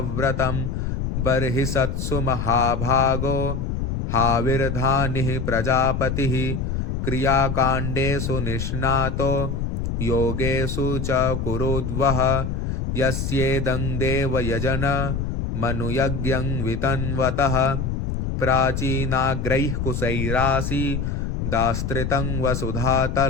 बर्हिषत्सु महाभागो हाविर्धानिः प्रजापतिः। क्रियाकाण्डेषु निष्णातो योगेषु च कुरुद्वः। यस्येदं देवयजन मनुयज्ञं वितन्वतः। प्राचीनाग्रैः कुशैरासि दास्त्रितं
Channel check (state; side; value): noise; left; rumble, 2 dB below the sound